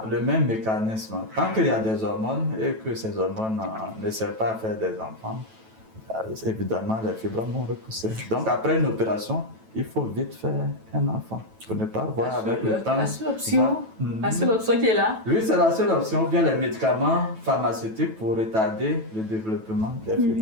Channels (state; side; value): late; left; 9.1 ms